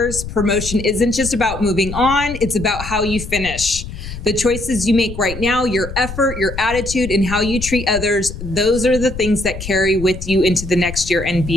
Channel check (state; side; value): noise; left; rumble, 10 dB below the sound